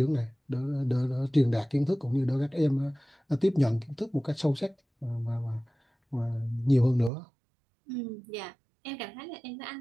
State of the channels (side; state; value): left; drops out; at 7.1 s